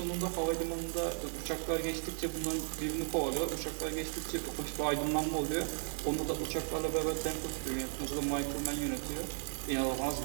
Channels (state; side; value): silent; left; 54 dB below the other